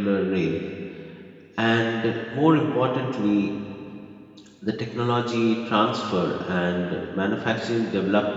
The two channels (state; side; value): identical; both; correlation 1.00